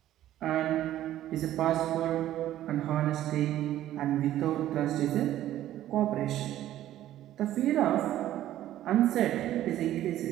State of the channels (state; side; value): quieter; left; 13.1 dB